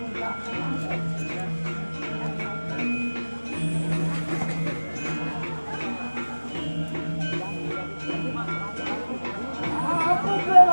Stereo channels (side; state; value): both; inverted; correlation -1.00